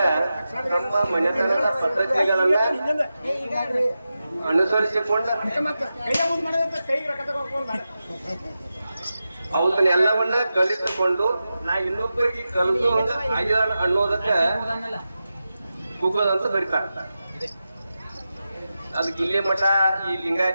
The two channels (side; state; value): both; inverted; correlation -0.92